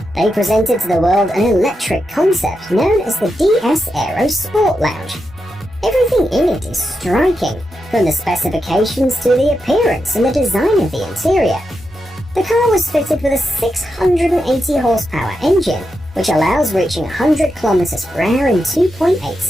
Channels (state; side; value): normal; both; correlation 0.86